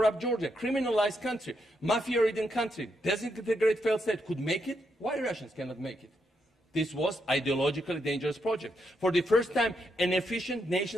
Georgia, criminalized country, mafia-ridden country, disintegrated failed state could make it, why Russians cannot make it? This was an ideologically dangerous project. For the first time, an efficient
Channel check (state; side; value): normal; both; correlation 0.80